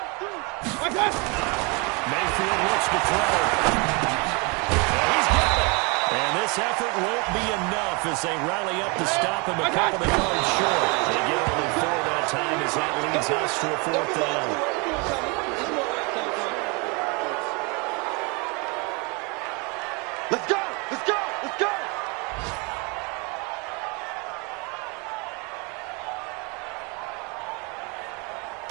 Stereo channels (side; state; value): left; quieter; 30.6 dB